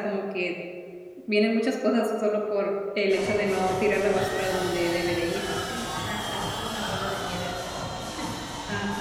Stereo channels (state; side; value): identical; both; correlation 1.00